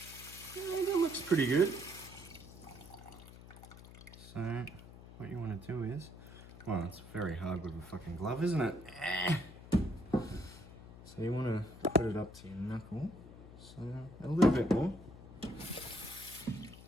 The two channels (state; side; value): noise; left; hum, 16 dB below the sound